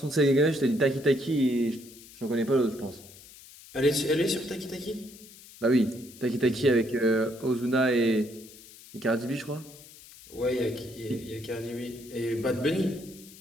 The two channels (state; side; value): noise; left; hiss, 20 dB below the sound